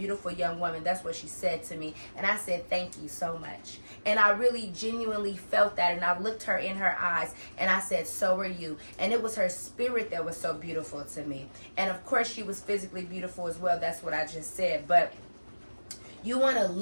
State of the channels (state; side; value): inverted; both; correlation -1.00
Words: young woman. That's what she said to me. And I said, thank you so much. And I really genuinely felt that. And I looked her in her eyes and I said, so are you. And it was her spirit that was so beautiful to me. And of course she was physically beautiful as well. That's what I just said. But you want to